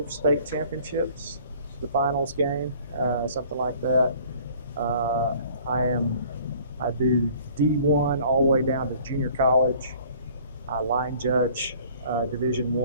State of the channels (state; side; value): inverted; both; correlation -0.53